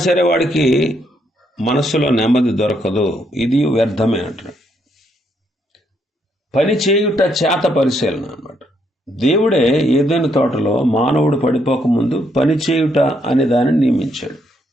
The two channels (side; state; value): both; normal; correlation 0.74